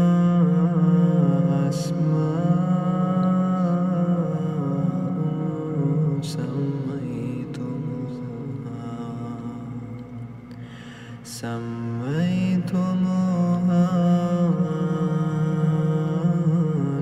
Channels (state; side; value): identical; both; correlation 1.00